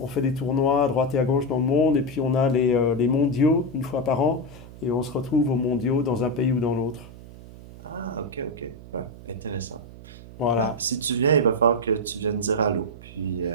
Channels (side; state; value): right; noise; hum, 17 dB below the sound